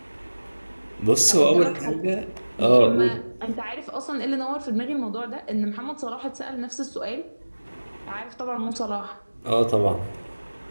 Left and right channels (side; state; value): both; inverted; correlation -1.00